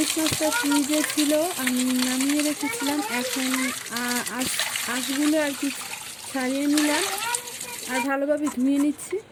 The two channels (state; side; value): identical; both; correlation 1.00